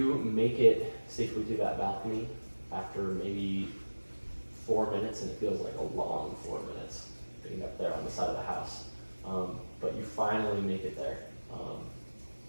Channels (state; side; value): inverted; both; correlation -1.00